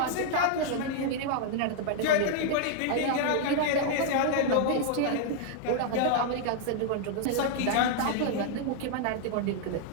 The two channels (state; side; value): different; both; correlation -0.01